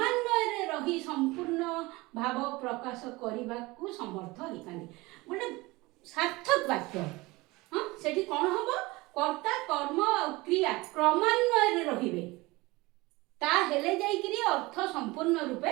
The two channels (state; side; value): quieter; left; 22.0 dB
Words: रही संपूर्ण भाव प्रकाश करने को समर्थ होता। गोटे सार्थक वाक्य हाँ सेठी कौन हम कर्ता कर्म और क्रिया क्रमान्वय रहिबे ता हेले जाइकरी अर्थ संपूर्ण रूपे